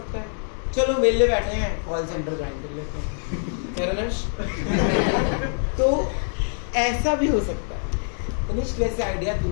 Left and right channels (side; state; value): right; silent; digital silence